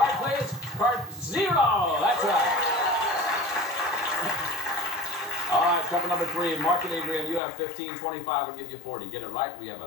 please. Card 0. That's right. All right, couple number 3, Mark and Adrian, you have 15, 25 will give you 40. Get it right, we have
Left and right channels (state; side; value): drops out; right; at 7.4 s